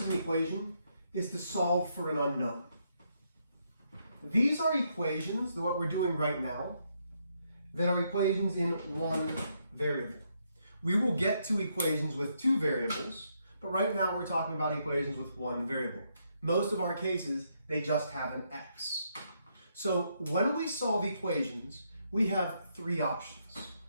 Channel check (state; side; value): inverted; both; correlation -0.76